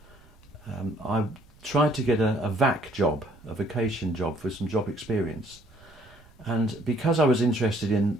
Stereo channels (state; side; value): noise; right; rumble, 26 dB below the sound